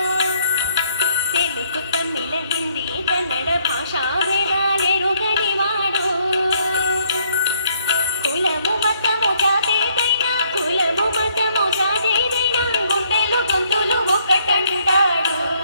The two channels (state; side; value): inverted; both; correlation -0.68